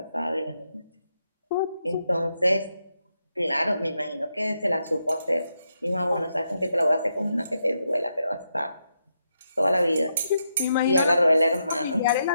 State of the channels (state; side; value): inverted; both; correlation -0.83